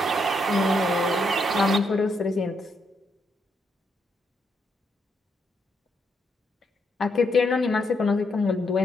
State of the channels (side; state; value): both; normal; correlation 0.78